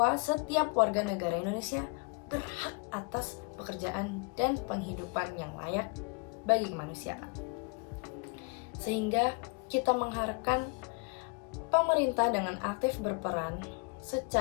setiap warga negara Indonesia berhak atas pekerjaan dan penghidupan yang layak bagi kemanusiaan. Sehingga kita mengharapkan pemerintah dengan aktif berperan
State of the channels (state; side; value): quieter; right; 32.8 dB